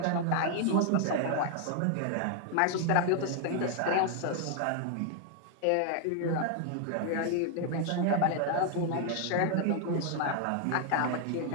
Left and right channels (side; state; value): both; different; correlation 0.00